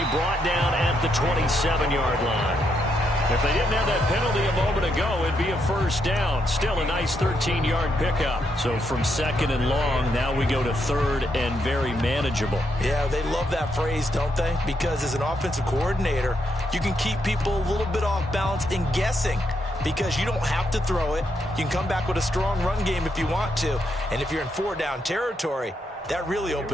brought down at the 27-yard line. If they didn't have that penalty a moment ago, it'd be a first down. Still a nice 13-yard pickup. So from 2nd and long, now we go to 3rd and very manageable. Yeah, they love that phrase, don't they? Because as an offensive coordinator, you can keep people a little bit off balance and guessing, because you don't have to throw it. You can come back with a strong run game if you want to. And if you're in 4-down territory, that really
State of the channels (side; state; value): both; normal; correlation 0.79